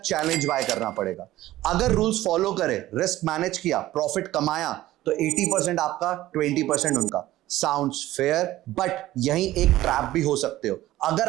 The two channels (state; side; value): quieter; left; 15.4 dB